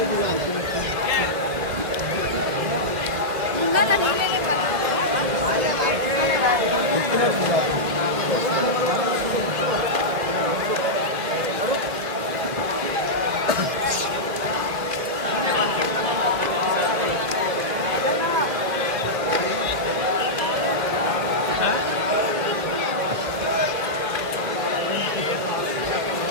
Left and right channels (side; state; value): left; late; 2.4 ms